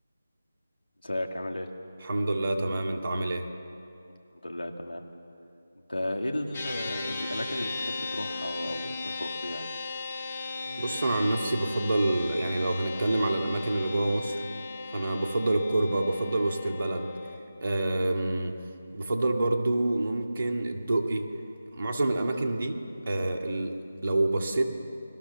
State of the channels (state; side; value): inverted; both; correlation -0.93